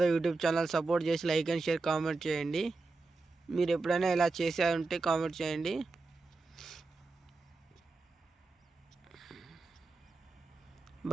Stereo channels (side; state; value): left; quieter; 3.7 dB